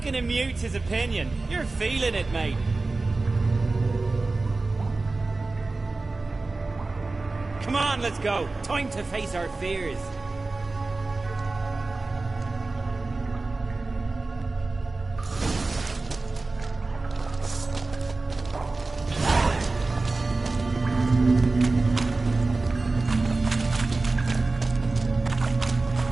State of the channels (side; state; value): left; quieter; 3.5 dB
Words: him mute his opinion. You're feeling it, mate. Come on, let's go. Time to face our fears.